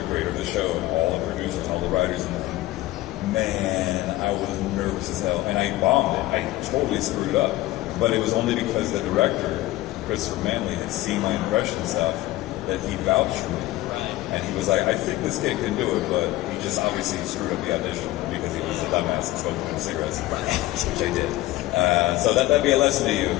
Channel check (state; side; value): quieter; right; 17.0 dB